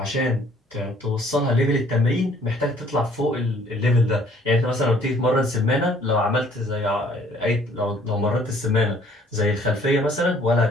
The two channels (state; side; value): normal; both; correlation 0.58